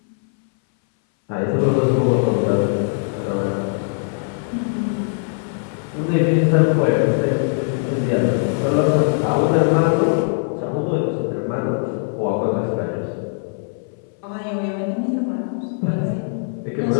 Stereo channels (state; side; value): silent; right; 62 dB below the other